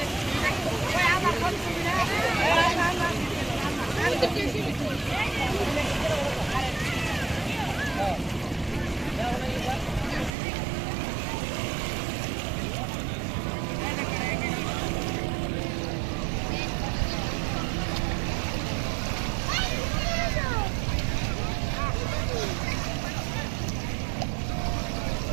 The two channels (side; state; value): left; drops out; at 10.3 s